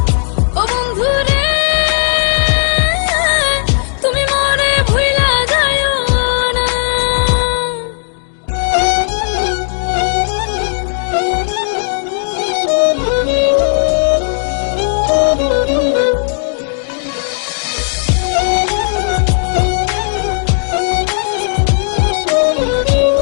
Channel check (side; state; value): right; silent; digital silence